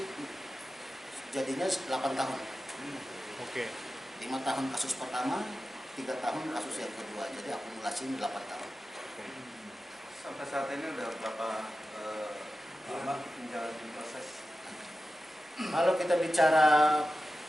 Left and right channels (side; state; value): both; normal; correlation 0.93